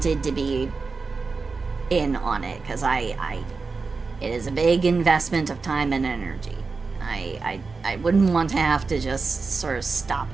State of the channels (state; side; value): quieter; left; 4.4 dB